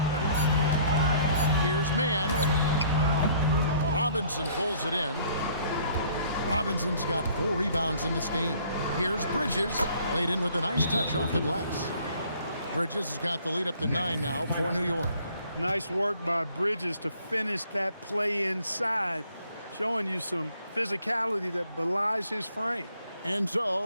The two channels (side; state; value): both; inverted; correlation -0.59